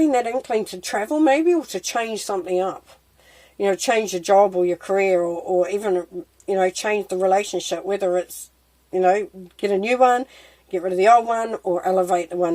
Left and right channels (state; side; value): identical; both; correlation 1.00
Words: that inkling to travel maybe, or to change something up. Change your job or your career, or even, change the relationship, whether it's, get a new one, get rid of the old one, or elevate the